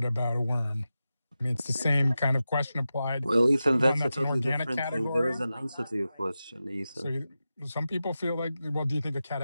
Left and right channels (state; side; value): inverted; both; correlation -0.92